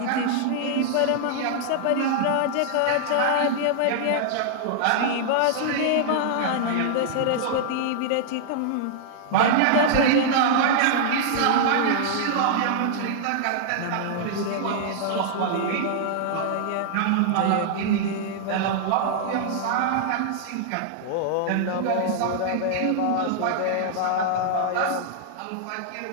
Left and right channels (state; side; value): different; both; correlation -0.01